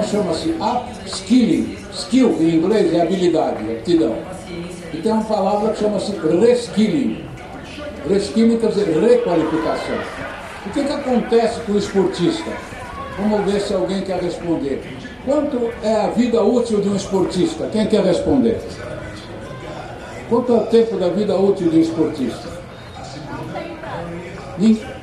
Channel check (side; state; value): both; identical; correlation 1.00